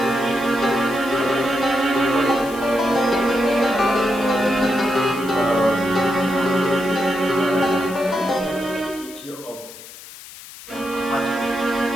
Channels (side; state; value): left; noise; hiss, 16 dB below the sound